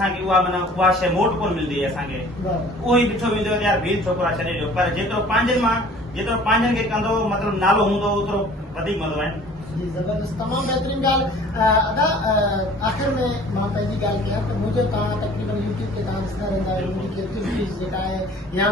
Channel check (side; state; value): both; normal; correlation 0.49